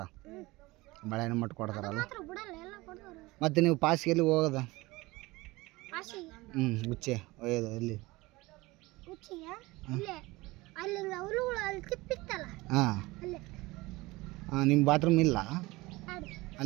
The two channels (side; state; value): left; quieter; 21.3 dB